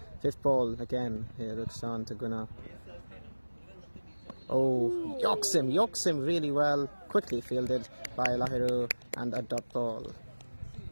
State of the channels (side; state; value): both; inverted; correlation -1.00